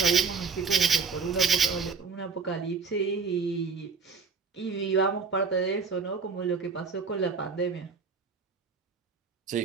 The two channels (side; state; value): left; quieter; 5.1 dB